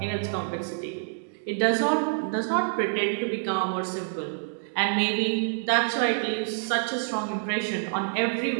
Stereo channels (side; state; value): left; silent; 60 dB below the other